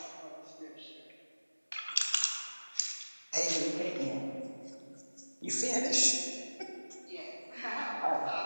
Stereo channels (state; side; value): inverted; both; correlation -1.00